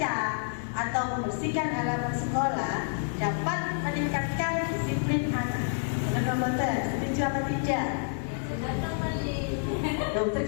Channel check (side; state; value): right; silent; 59 dB below the other